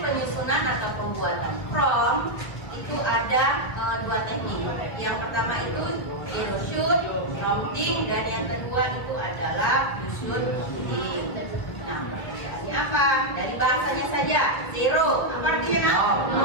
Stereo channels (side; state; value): right; late; 1.6 ms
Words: atau pembuatan prompt itu ada 2 teknik. Yang pertama itu zero shoot, prompting, dan yang kedua itu adalah you should prompting. Nah, perbedaannya apa? Dari bahasanya saja, zero, apa artinya?